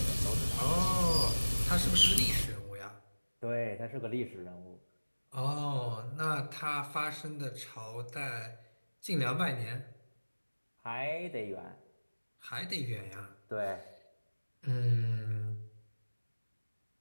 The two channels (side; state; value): both; inverted; correlation -1.00